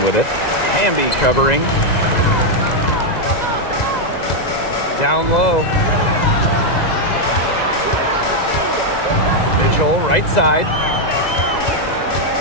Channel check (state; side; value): late; right; 2.0 ms